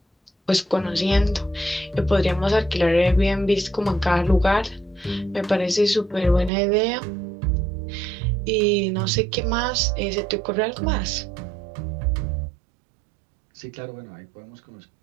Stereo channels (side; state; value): left; drops out; at 6.5 s